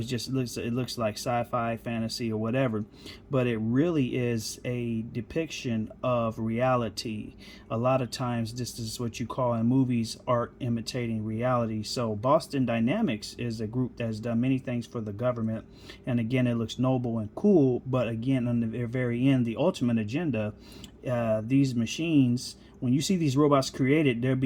just looks like sci-fi, fantasy, or whatever, but it really is a depiction of reality. A lot of times this is what you call in movies art imitating reality. So Boston Dynamics is a group that has done many things for the government, and again, it looks noble and cool, but again, on the very end, the ultimate agenda, these machines, when you see these robots created, they'll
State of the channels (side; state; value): both; identical; correlation 1.00